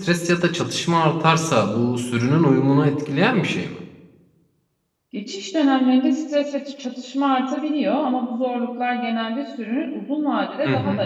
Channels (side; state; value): both; identical; correlation 1.00